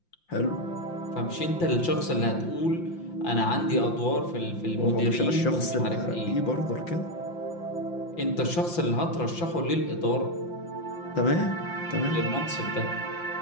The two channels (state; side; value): late; right; 5.8 ms